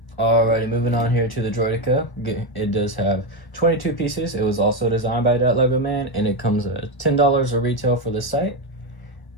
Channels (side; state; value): right; late; 1.0 ms